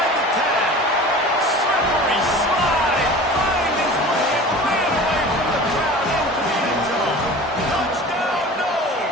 the 10. Slippery slide. Find his way and ran away from the crowd into the end zone. Touchdown, no.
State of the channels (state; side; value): normal; both; correlation 0.39